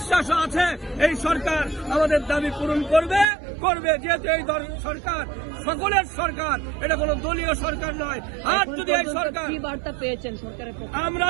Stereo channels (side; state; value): left; drops out; at 3.2 s